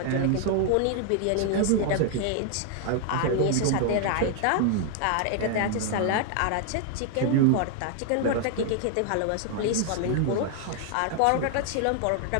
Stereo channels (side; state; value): both; different; correlation 0.00